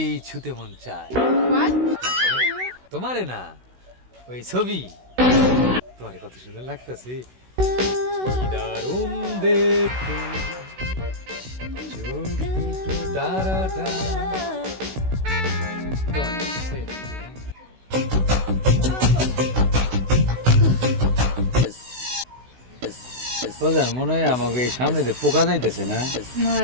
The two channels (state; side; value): late; left; 16 ms